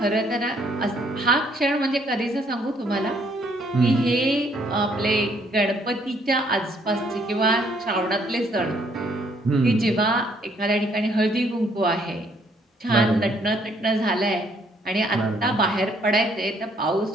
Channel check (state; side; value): normal; both; correlation 0.66